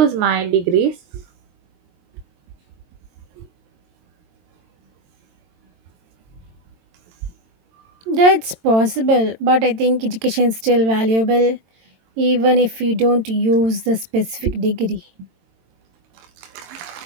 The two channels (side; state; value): left; late; 22 ms